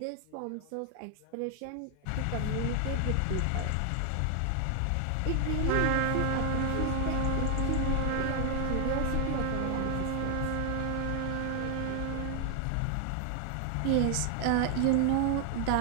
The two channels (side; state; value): both; different; correlation 0.00